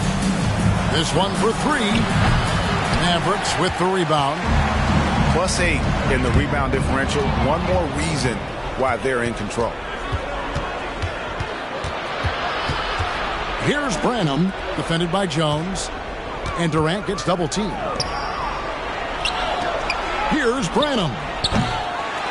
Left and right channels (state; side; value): identical; both; correlation 1.00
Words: This one for three. Mavericks with the rebound. +8 in the rebound differential. One more reason why they're in control. Here's Branham, defended by Jones. And Durant gets double teamed. Here's Branham.